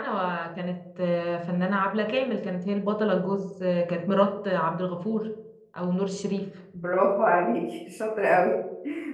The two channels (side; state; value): both; identical; correlation 1.00